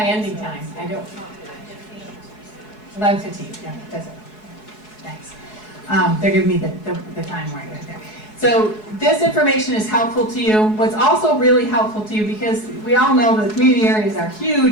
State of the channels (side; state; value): right; late; 4.7 ms